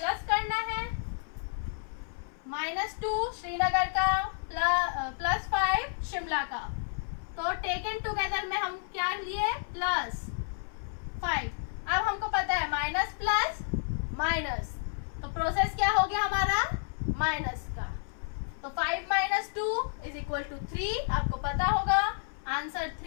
करना है, -2 श्रीनगर का +5 शिमला का। तो टेकन टुगेदर में हम क्या लिए, +5। अब हमको पता है माइनस प्लस माइनस, तो प्रोसेस क्या हो गया हमारा, माइनस का। तो 5 - 2 = 3, आपको पता होगा आंसर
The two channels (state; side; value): silent; right; 57 dB below the other